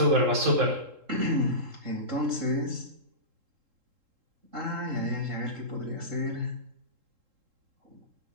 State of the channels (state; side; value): late; left; 3.7 ms